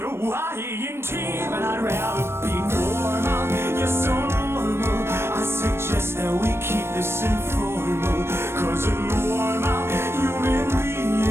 I in team, and I'd rather be normal. You're so normal. I suggest that we keep this informal, 'cause a normal human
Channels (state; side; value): late; left; 0.12 ms